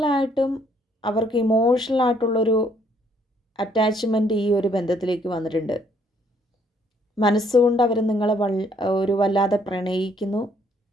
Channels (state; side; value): normal; both; correlation 0.66